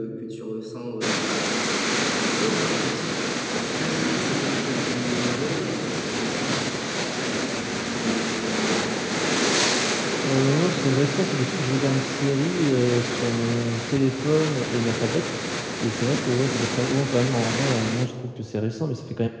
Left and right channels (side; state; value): both; identical; correlation 1.00